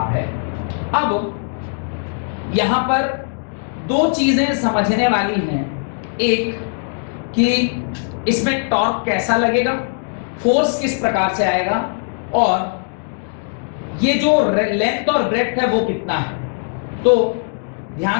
है। अब यहां पर दो चीजें समझने वाली हैं, एक कि इसमें टॉर्क कैसा लगेगा, फोर्स किस प्रकार से आएगा, और ये जो लेंथ और ब्रेड्थ है वो कितना है। तो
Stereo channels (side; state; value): right; silent; digital silence